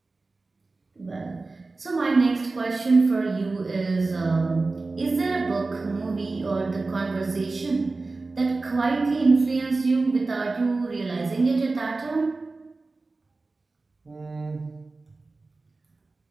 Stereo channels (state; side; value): quieter; left; 3.6 dB